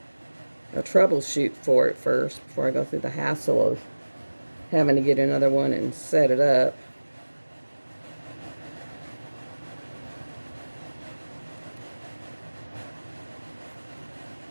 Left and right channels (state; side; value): inverted; both; correlation -1.00